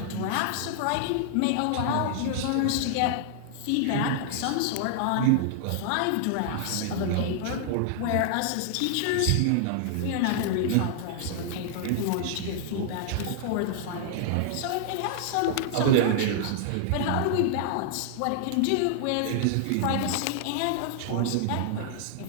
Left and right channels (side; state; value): both; different; correlation -0.01